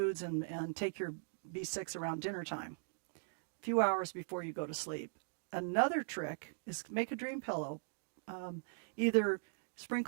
and take your B6 around dinner time, a few hours before you go to sleep. Another trick is make a dream pillow. Either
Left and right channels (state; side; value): silent; left; digital silence